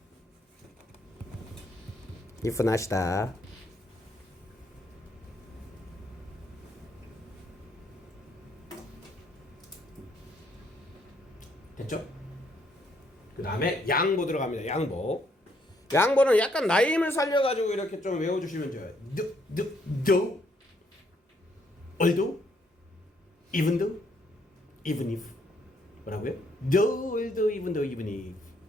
if not이다. 됐죠? 그 다음에 양보 들어갑니다. 양보는 약간 나임을 살려가지고 이렇게 좀 외워주시면 좋아요. though, although, even though, even if. 뭐라고요? though, although, even though, even if.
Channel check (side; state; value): both; normal; correlation 0.70